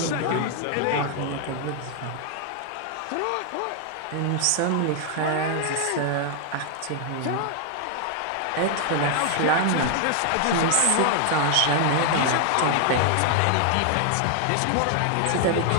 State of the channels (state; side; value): different; both; correlation 0.00